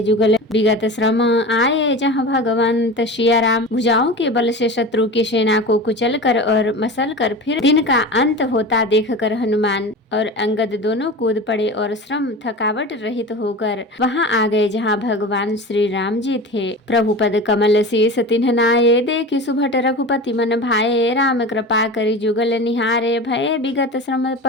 जुगल विगत श्रम, आए जहाँ भगवंत। सिया राम भुजाओं के बल से शत्रु की सेना को कुचल कर और मसल कर फिर दिन का अंत होता देखकर हनुमान और अंगद दोनों कूद पड़े और श्रम थकावट रहित होकर वहां आ गए जहां भगवान श्री राम जी थे। प्रभु पद कमल शीस तिन्ह नाये, देखि सुभट रघुपति मन भाए। राम कृपा करि जुगल निहारे, भये विगत श्रम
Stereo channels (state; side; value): normal; both; correlation 0.31